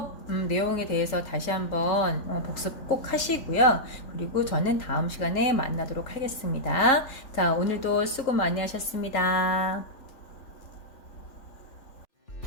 내용에 대해서 다시 한번 복습 꼭 하시고요. 그리고 저는 다음 시간에 만나도록 하겠습니다. 자, 오늘도 수고 많이 하셨습니다.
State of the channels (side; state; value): right; late; 3.8 ms